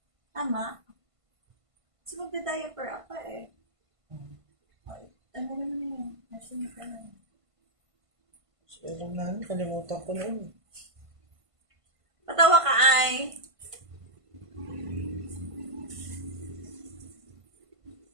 Tama? Kasi magda-diaper ako eh. Ay, ano naman yun? Nasunod ka na. So, alam namin, kalimutan ko na yun. Patawa ka ay.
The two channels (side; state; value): left; late; 1.5 ms